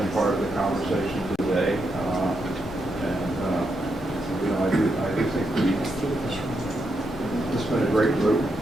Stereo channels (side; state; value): both; normal; correlation 0.82